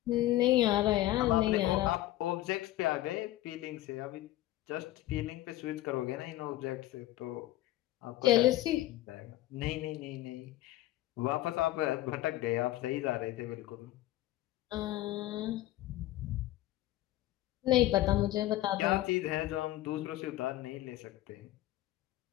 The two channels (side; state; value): right; quieter; 15.7 dB